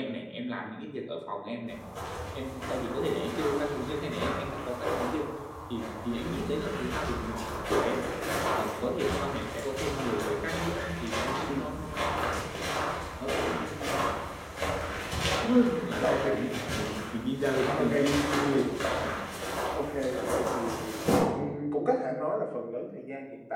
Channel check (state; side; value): identical; both; correlation 1.00